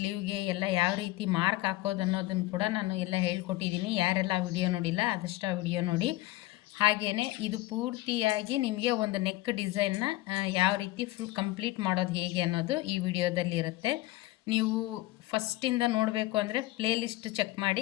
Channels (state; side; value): quieter; right; 17.7 dB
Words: ಎಲ್ಲ ಯಾವ ರೀತಿ ಮಾರ್ಕ್ ಹಾಕೋದು ಅನ್ನೋದನ್ನು ಕೂಡ ನಾನು ಎಲ್ಲ ಹೇಳ್ಕೊಟ್ಟಿದ್ದೀನಿ. ಯಾರೆಲ್ಲ ವಿಡಿಯೋ ನೋಡಿಲ್ಲ ಆದಷ್ಟು ಆ ವಿಡಿಯೋ ನೋಡಿ. ಹಾಗೆಯೇ ಇದು ಪೂರ್ತಿಯಾಗಿ ನಿಮಗೆ ಒಂದು ನೆಕ್ ಡಿಸೈನ್ನ ಯಾವ ರೀತಿ ಫುಲ್ ಕಂಪ್ಲೀಟ್ ಮಾಡೋದು ಹೇಗೆ ಅನ್ನೋದು ಈ ವಿಡಿಯೋದಲ್ಲಿ ಇರುತ್ತೆ. ನೀವು ಫಸ್ಟಿಂದ ನೋಡಬೇಕು ಅಂದರೆ ಪ್ಲೇ ಲಿಸ್ಟ್ ಚೆಕ್